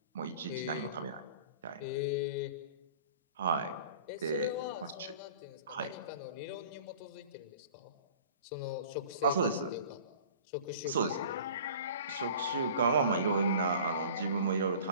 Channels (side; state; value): both; inverted; correlation -0.44